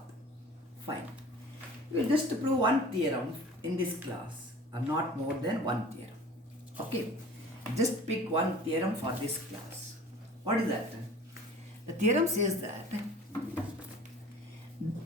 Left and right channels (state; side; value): normal; both; correlation 0.44